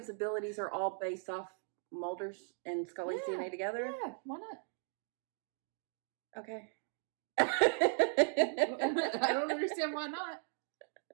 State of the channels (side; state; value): left; silent; 53 dB below the other